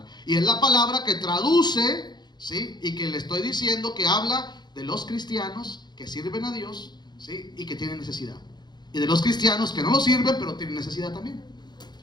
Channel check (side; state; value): right; late; 0.21 ms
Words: Y es la palabra que traduce, ¿sí? Y que le estoy diciendo que habla de los cristianos que sirven a Dios, ¿sí? Y que tienen necesidad. Y de los cristianos que no lo sirven, pero tienen necesidad también.